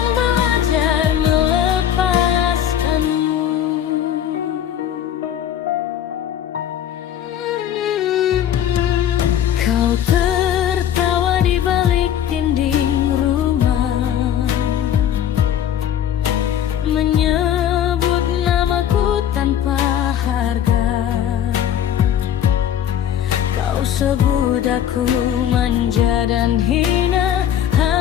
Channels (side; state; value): right; quieter; 10.2 dB